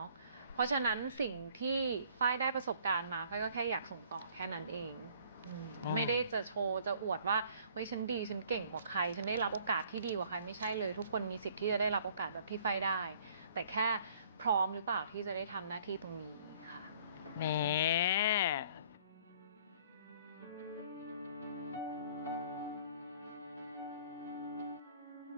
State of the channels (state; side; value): inverted; both; correlation -0.57